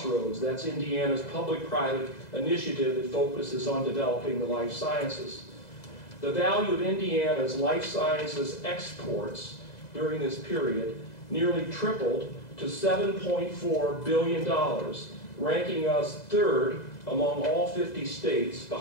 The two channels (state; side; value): late; right; 2.0 ms